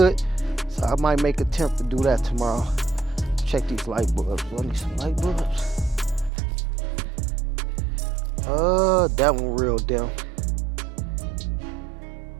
So I might make an attempt to do that tomorrow. Check these light bulbs. Let me some light bulbs. That one real dim.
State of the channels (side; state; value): left; drops out; at 6.3 s